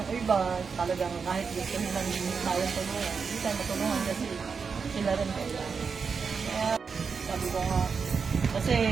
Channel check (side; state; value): left; quieter; 5.6 dB